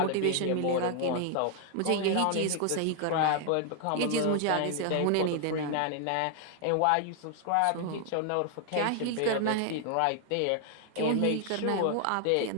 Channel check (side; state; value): both; different; correlation 0.00